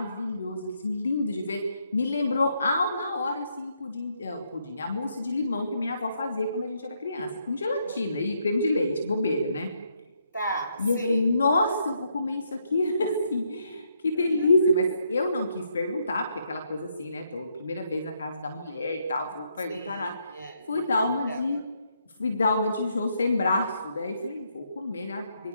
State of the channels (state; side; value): inverted; both; correlation -0.75